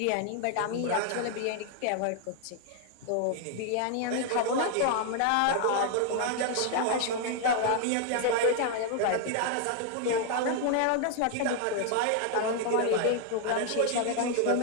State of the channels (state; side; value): different; both; correlation 0.00